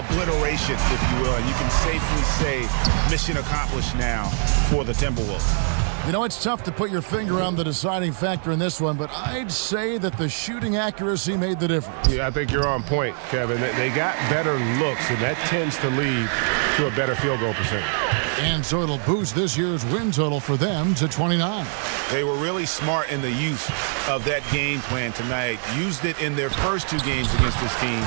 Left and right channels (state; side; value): silent; left; 56 dB below the other